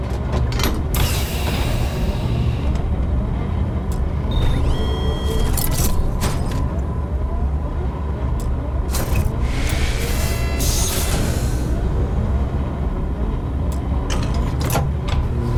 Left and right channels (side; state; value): both; identical; correlation 1.00